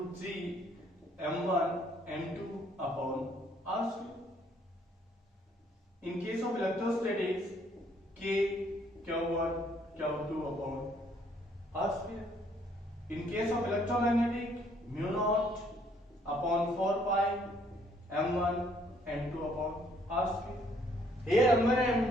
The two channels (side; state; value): both; normal; correlation 0.65